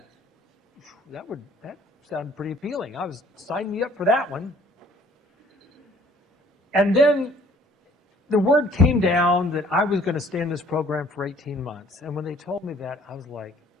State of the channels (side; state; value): both; normal; correlation 0.56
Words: sounded pretty appealing. Sign me up for that one. And then the word came down that I was going to stay in this program for 18 months. And when they told me that, I was like,